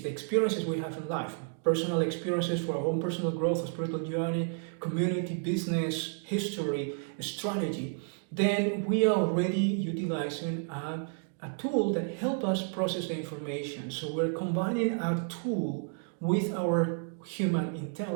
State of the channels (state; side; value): silent; left; 57 dB below the other